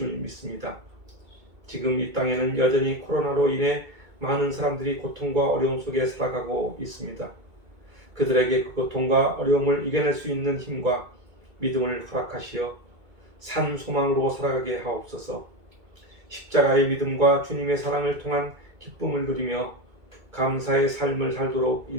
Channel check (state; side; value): late; left; 2.2 ms